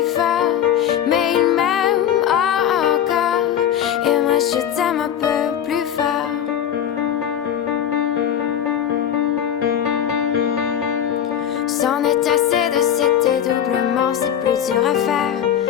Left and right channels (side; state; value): right; quieter; 9.7 dB